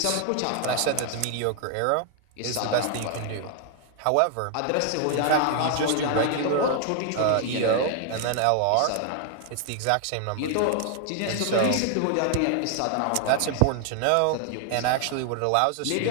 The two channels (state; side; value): different; both; correlation 0.00